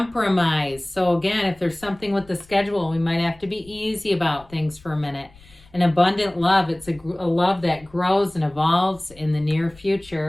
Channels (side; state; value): left; noise; rumble, 26 dB below the sound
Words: So again, if there's something with the schedule, we might have to be easy about things for a minute. An abundant love. It's a love that grows and evolves in the near